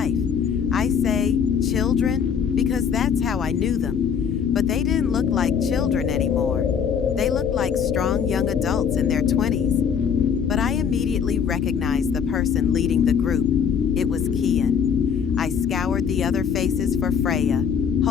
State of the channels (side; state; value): right; quieter; 7.3 dB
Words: I say children because that's how I knew them. But they didn't look like children anymore. They looked like strong young adults in their 20s. But I immediately recognized the person leading the group. It was Kian. I scoured the other faces for Freya,